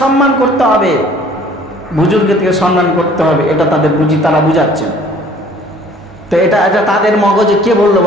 সম্মান করতে হবে, বুজুর্গদেরকে সম্মান করতে হবে, এটা তাদের তারা বুঝাচ্ছেন। তো এটা তাদের মগজে কে বললো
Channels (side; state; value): both; normal; correlation 0.54